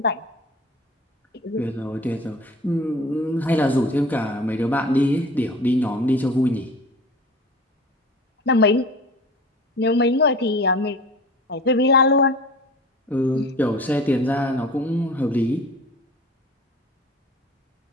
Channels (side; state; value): both; normal; correlation 0.41